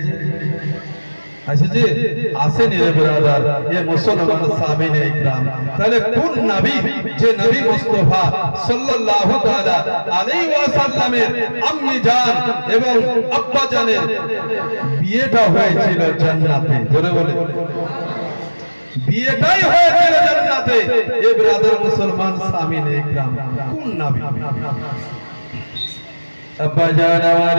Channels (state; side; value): inverted; both; correlation -1.00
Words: আসেছি? আসেনি রে ব্রাদার, এ মুসলমান সামিনে ইকরাম। তাহলে কোন নবী, যে নবী মুস্তাফা সাল্লাল্লাহু তাআলা আলাইহি ওয়াসাল্লামের আম্মি জান এবং আব্বা জানের বিয়েটা হয়েছিল জান্নাতে। জোরে বলে, বিয়েটাই হয়েছিল জান্নাতে। এ ব্রাদার, মুসলমান সামিনে ইকরাম, কোন নবী? আব্বা জান, আমার